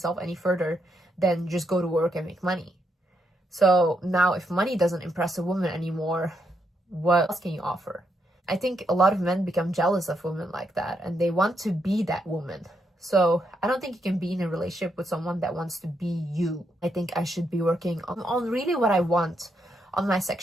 any further than just go to work and make money. So now if money doesn't impress a woman anymore, what else can you offer? I think a lot of men become jealous of women like that and they want to be that woman. So I don't think you can be in a relationship with someone that wants to be you. I think I should be working on really what I want, on my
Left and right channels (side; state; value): both; normal; correlation 0.79